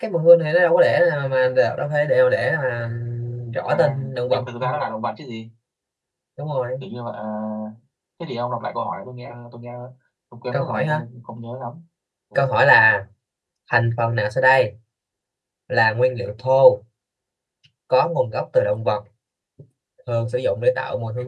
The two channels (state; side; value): identical; both; correlation 1.00